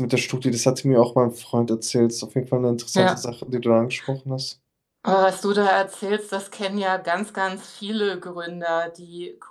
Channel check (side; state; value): both; identical; correlation 1.00